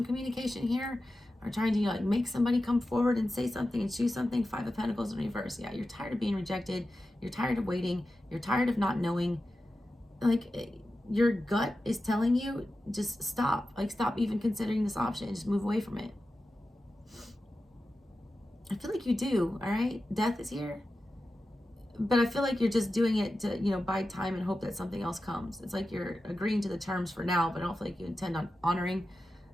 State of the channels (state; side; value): normal; both; correlation 0.92